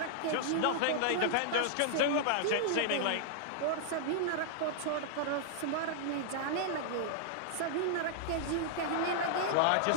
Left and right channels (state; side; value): different; both; correlation -0.01